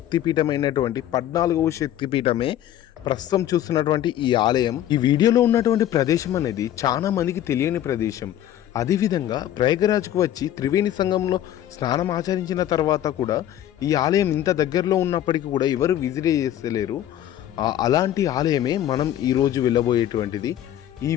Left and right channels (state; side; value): quieter; right; 11.8 dB